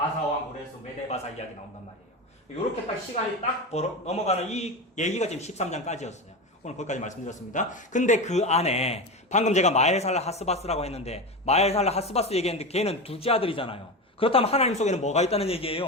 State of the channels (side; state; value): both; normal; correlation 0.22